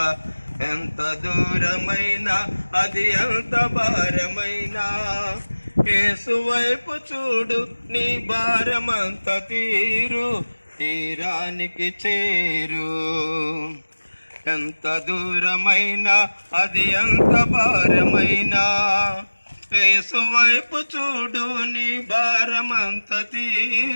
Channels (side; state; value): both; inverted; correlation -1.00